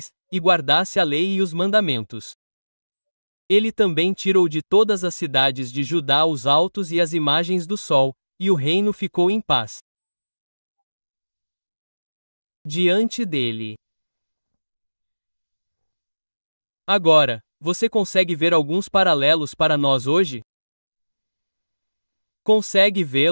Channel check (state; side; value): inverted; both; correlation -1.00